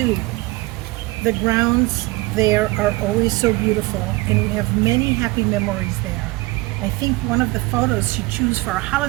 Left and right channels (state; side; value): quieter; left; 22.3 dB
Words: The grounds there are always so beautiful, and we have many happy memories there. I think one of the photos she chose for a